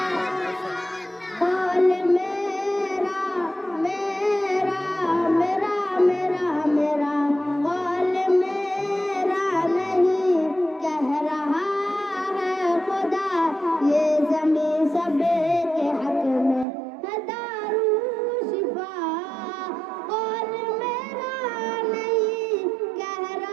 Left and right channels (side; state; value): left; drops out; at 16.7 s